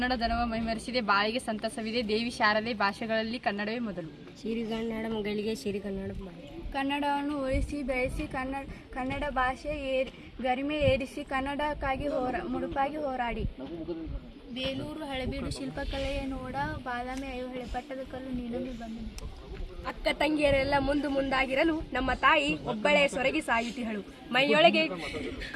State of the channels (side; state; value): both; identical; correlation 1.00